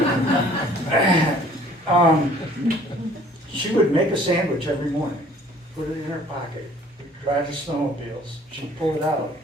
She would make a sandwich every morning, put it in her pocket, ride the snowmobiles. She'd pull it out,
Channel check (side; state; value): both; normal; correlation 0.54